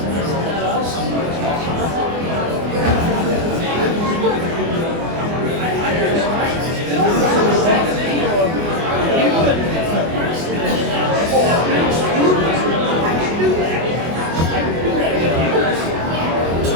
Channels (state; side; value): late; left; 24 ms